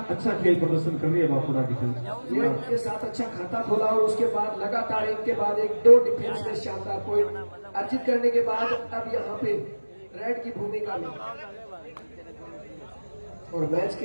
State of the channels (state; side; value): inverted; both; correlation -1.00